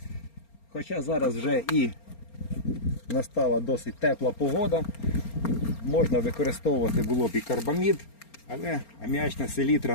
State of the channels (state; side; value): late; right; 4.3 ms